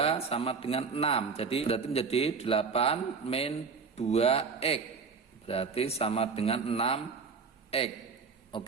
sama dengan 6. Jadi berarti menjadi 8 min 2X. Berarti sama dengan 6X.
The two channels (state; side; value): quieter; left; 5.2 dB